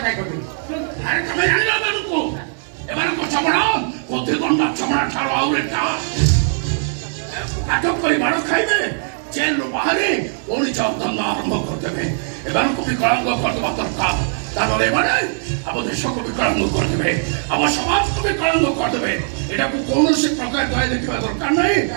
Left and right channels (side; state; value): left; silent; 65 dB below the other